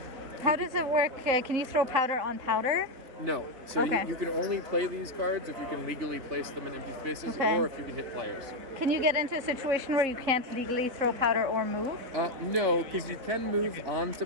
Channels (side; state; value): left; late; 3.9 ms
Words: How does it work? Can you throw powder on powder? No. So Okay. you can only play these cards if you can legally place them in empty spaces, Okay. or if you can hit players. Can you get into a situation where you can't legally throw powder or move? No, because you can move onto